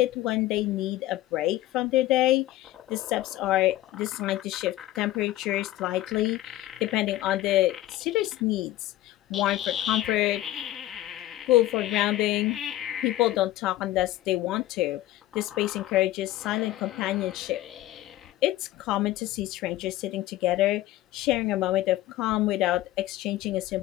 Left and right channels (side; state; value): right; quieter; 15.4 dB